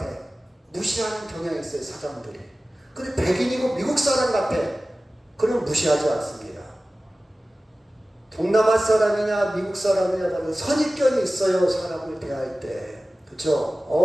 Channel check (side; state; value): both; normal; correlation 0.96